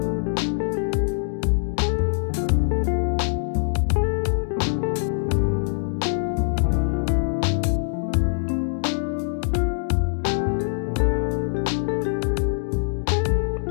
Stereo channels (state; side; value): silent; right; digital silence